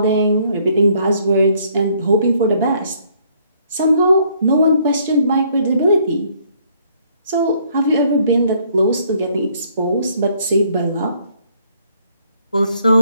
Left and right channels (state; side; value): inverted; both; correlation -0.66